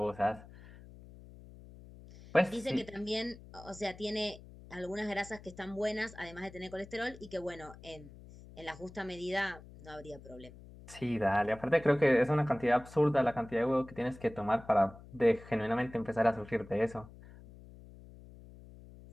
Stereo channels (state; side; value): noise; left; hum, 19 dB below the sound